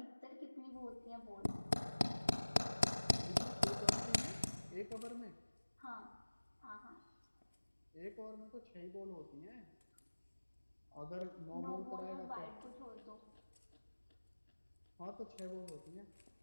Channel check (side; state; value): both; inverted; correlation -1.00